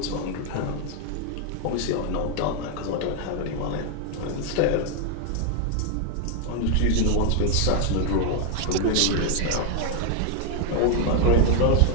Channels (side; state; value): both; different; correlation 0.00